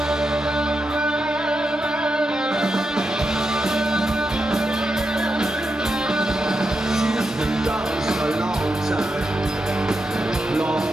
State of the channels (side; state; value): both; normal; correlation 0.86